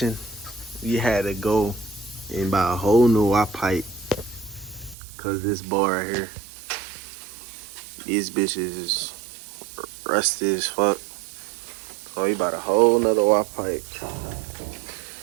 We had to go and buy a whole new Y pipe. Cause this bar right here, these bitches is rusty as fuck. So we bought a whole nother Y pipe.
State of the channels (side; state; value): left; drops out; at 5.0 s